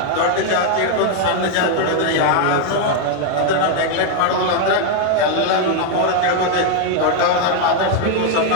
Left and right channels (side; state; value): both; different; correlation 0.01